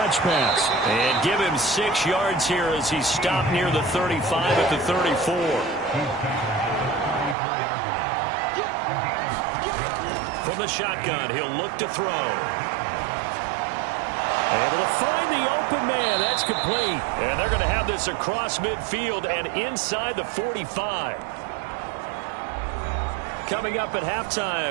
pass. And give him 6 yards here as he's stopped near the 35 at the 34. From the shotgun, he'll look to throw. Able to find the open man. That's complete. And they're going to have this across midfield and inside the 45. Coming up at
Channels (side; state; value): left; drops out; at 7.4 s